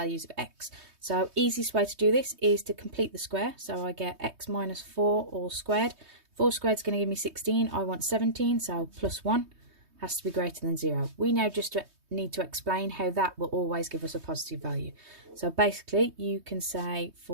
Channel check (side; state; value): left; late; 3.2 ms